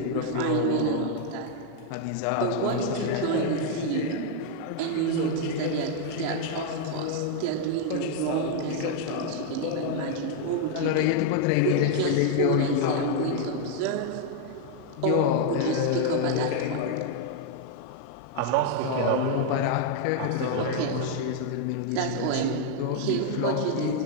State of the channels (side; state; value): both; different; correlation 0.00